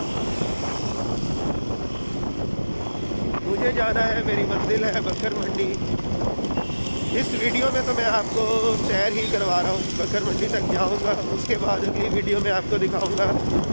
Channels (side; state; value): both; inverted; correlation -1.00